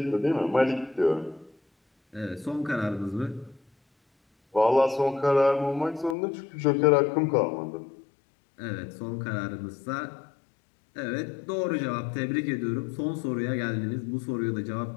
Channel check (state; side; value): drops out; right; at 6.2 s